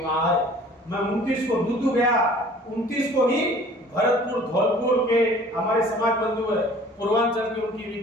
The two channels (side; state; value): both; normal; correlation 0.50